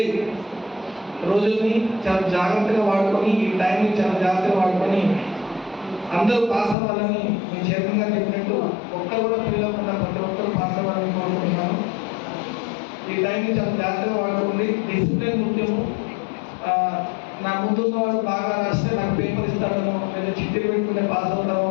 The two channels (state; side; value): drops out; right; at 6.8 s